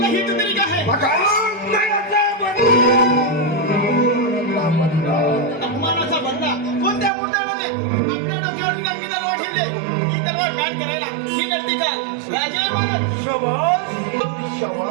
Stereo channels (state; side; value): drops out; left; at 7.1 s